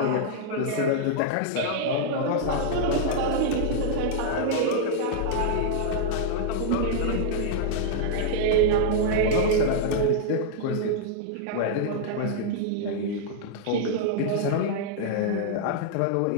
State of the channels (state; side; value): different; both; correlation -0.01